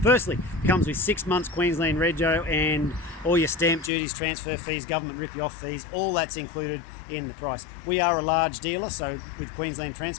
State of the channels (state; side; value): drops out; right; at 3.9 s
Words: Firstly, it comes with 6 months Queensland Rego and all your stamp duties, transfer fees, government rip-you-off fees, all that's included in the price. We are a large dealer, so with Queensland